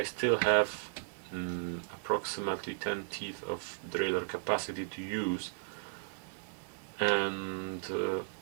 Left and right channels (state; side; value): silent; left; digital silence